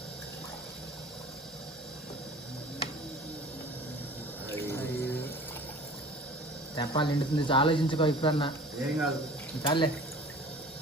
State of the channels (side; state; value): both; normal; correlation 0.44